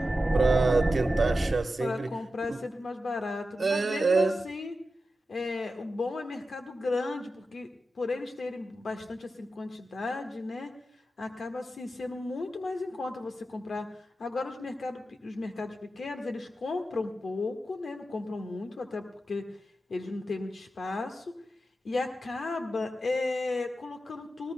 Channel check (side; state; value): both; normal; correlation 0.91